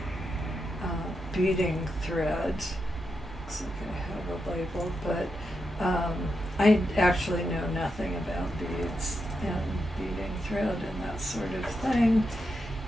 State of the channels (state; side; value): normal; both; correlation 0.85